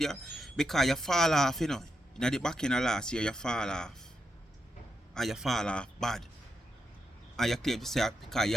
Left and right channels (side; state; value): both; normal; correlation 0.84